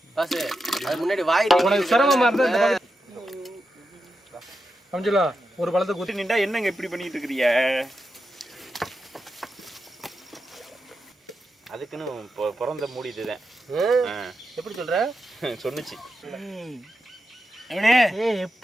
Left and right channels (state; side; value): normal; both; correlation 0.88